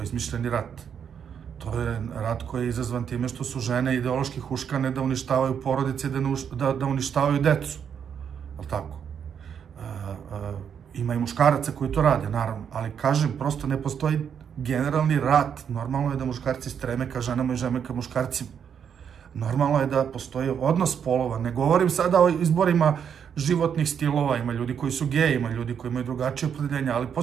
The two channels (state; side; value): quieter; left; 7.8 dB